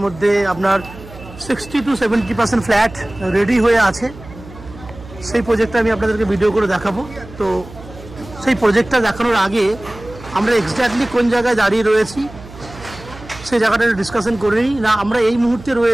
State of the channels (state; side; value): noise; right; hum, 17 dB below the sound